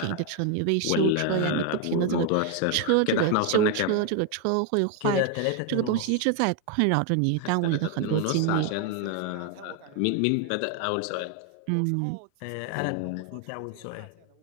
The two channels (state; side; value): different; both; correlation 0.01